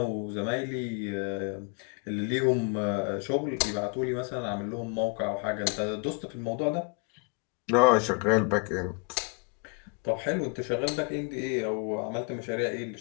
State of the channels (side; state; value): right; quieter; 35.4 dB